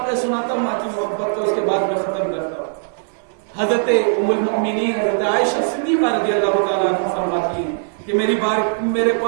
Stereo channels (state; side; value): silent; left; digital silence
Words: سناتا ہوں ماں کی محبت کو، اس کے بعد میں ختم کرتا ہوں. حضرت ام المؤمنین حضرت عائشہ صدیقہ رضی اللہ تعالیٰ عنہا فرماتی ہیں کہ میرے